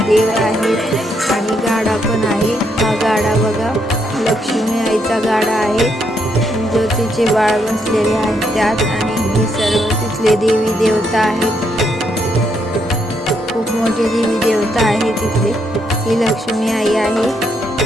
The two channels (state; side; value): normal; both; correlation 0.76